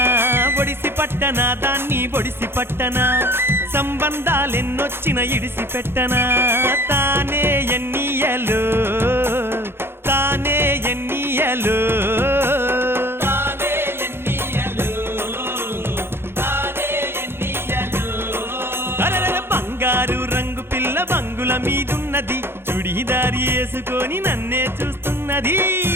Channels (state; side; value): late; left; 0.11 ms